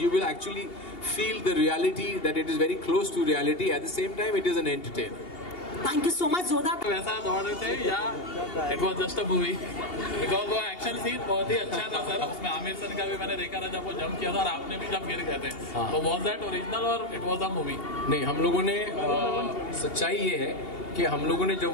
will actually feel the reality, that it is very close to reality, at the same time it is an entertainer. Thank you so much. जोरदार। वैसा दौड़ रहे थे या it was just a movie? Because वो action scene बहुत ही अच्छा था सर। उसमें आमिर सर का भी मैंने देखा था जब वो जंप किया था, और आपने भी जब गिर गए थे। तो वॉज दैट ओरिजिनल और इट वॉज अ मूवी? नहीं, हम लोगों ने सच्चाई ये है कि हम लोगों ने जब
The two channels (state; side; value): late; right; 2.8 ms